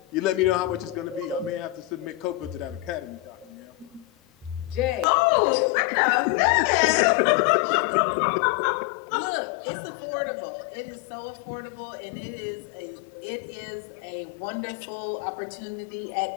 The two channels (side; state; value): right; drops out; at 5.1 s